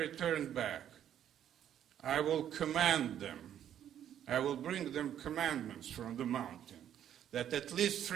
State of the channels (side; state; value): left; quieter; 10.2 dB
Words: back, I will command them. I will bring them commandments from the mountain that at least